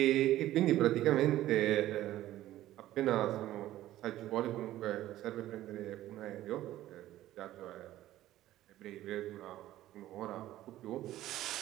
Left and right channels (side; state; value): left; quieter; 14.3 dB